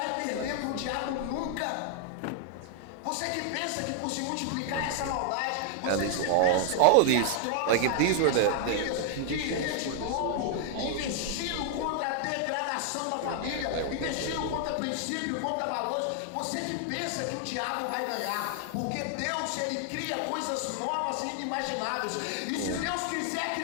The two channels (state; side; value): different; both; correlation 0.00